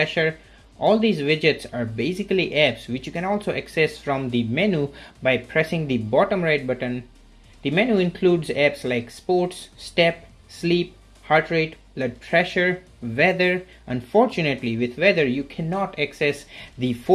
All these widgets are basically apps which you can also access from the menu by pressing the bottom right button. The menu includes apps like sports, step, sleep, heart rate, blood pressure, weather. Unfortunately, with weather you cannot access the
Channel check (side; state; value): both; identical; correlation 1.00